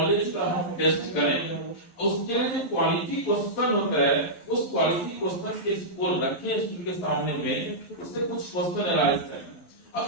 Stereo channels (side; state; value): right; late; 11 ms